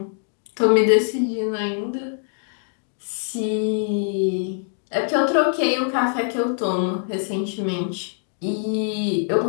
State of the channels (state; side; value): silent; right; 63 dB below the other